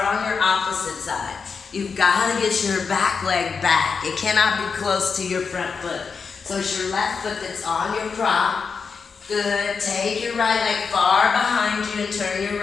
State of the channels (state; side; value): quieter; right; 5.5 dB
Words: on your opposite side. You've got to get your back leg back. It cannot be close to your front foot. So it's your left foot that's on your prop. Good. Take your right leg far behind you and turn your